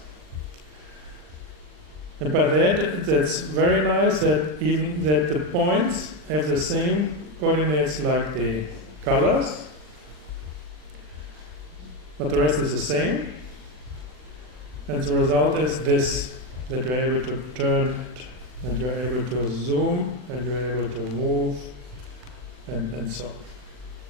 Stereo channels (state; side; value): late; left; 39 ms